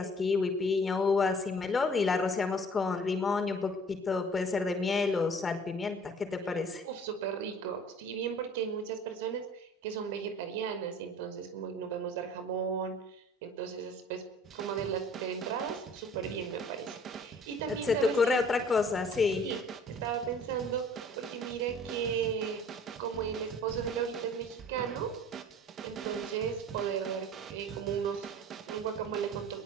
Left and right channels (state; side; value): normal; both; correlation 0.50